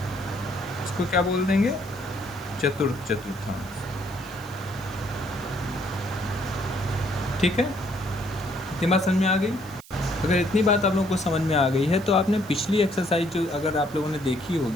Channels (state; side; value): noise; right; hiss, 21 dB below the sound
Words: इसको क्या बोल देंगे? चतुर्थ चतुर्थांश। ठीक है, इतनी बात समझ में आ गई। अगर इतनी बात आप लोगों को समझ में आ गई है तो आपने पिछली एक्सरसाइज जो अगर आप लोगों ने देखी